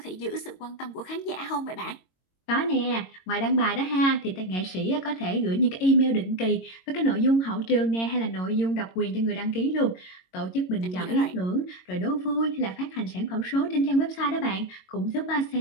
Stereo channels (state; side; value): late; right; 22 ms